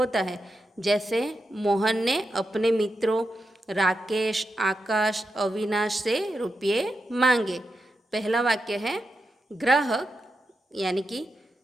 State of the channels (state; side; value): normal; both; correlation 0.88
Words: है। जैसे मोहन ने अपने मित्रों राकेश, आकाश, अविनाश से रुपये मांगे। पहला वाक्य है, ग्राहक यानी कि